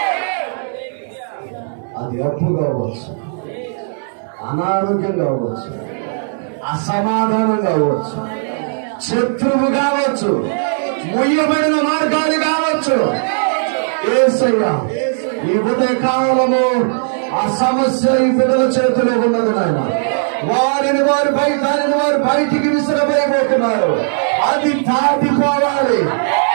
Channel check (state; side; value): silent; left; digital silence